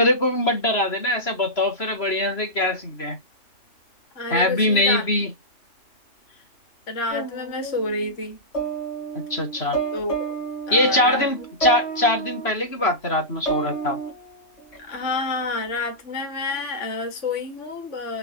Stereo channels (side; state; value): right; late; 3.0 ms